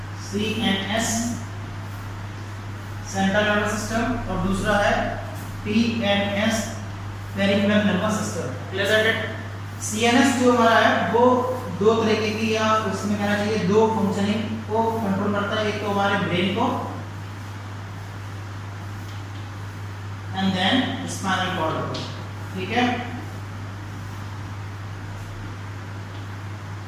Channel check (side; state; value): both; identical; correlation 1.00